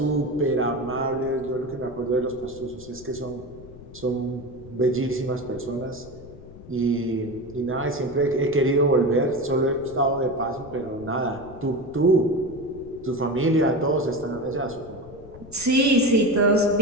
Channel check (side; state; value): left; noise; rumble, 18 dB below the sound